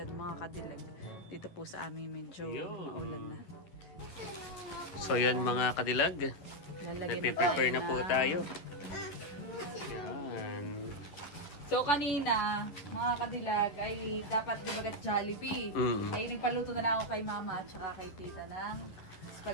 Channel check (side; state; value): right; late; 11 ms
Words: mga kadilag. Dito po sa amin medyo maulan na. So yan mga kadilag. Lalagyan Nagpe-prepare na po mga- tayo. Yan. So kanina, mga kadilag, ay dapat dibagat Jollibee. Ay nagpaluto na lang ako kay mama at saka kay tita ng